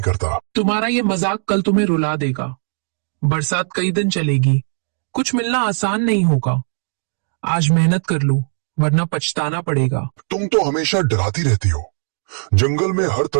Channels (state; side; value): silent; left; 58 dB below the other